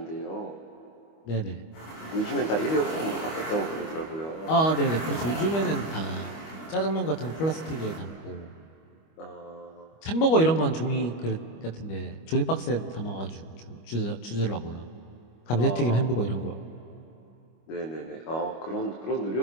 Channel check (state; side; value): late; right; 25 ms